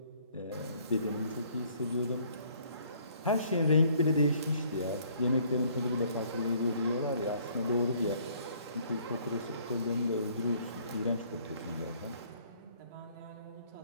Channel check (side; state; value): both; inverted; correlation -0.61